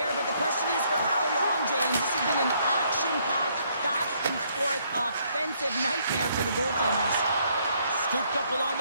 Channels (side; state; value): both; inverted; correlation -0.69